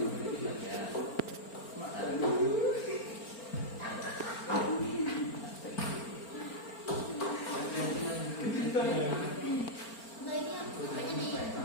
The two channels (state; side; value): late; right; 4.4 ms